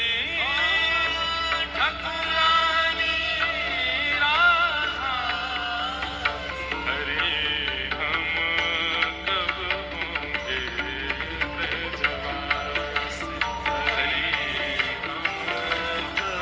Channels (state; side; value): identical; both; correlation 1.00